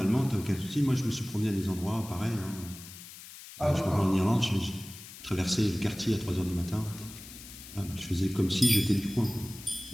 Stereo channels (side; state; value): left; noise; hiss, 15 dB below the sound